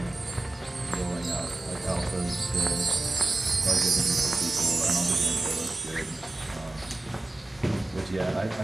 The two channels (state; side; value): quieter; left; 3.3 dB